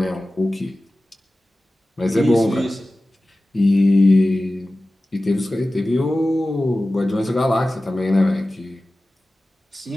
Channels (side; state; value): both; normal; correlation 0.96